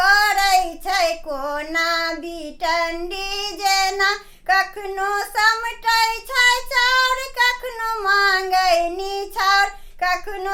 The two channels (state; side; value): identical; both; correlation 1.00